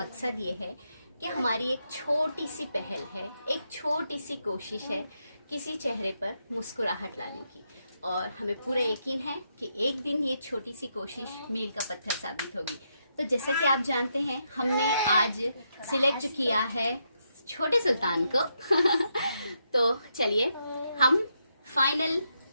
ये है कि हमारी एक छोटी सी पहल है, एक छोटी सी कोशिश है किसी चेहरे पर मुस्कुराहट लाने की, और हमें पूरा यकीन है कि एक दिन ये छोटी सी कोशिश मील का पत्थर साबित होगी। तो जैसा कि आप जानते हैं, हमने आज सिलेक्ट किया है छोटे सुल्तान को तो चलिए हम फाइनल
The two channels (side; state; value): both; inverted; correlation -0.81